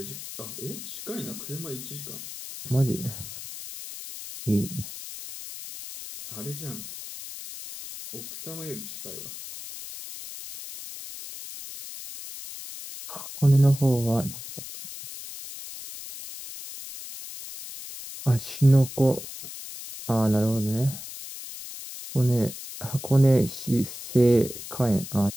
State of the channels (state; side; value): noise; left; hiss, 11 dB below the sound